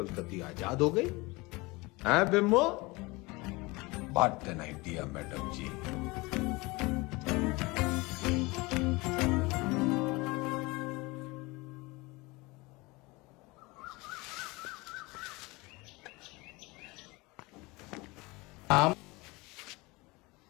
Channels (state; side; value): quieter; right; 23.8 dB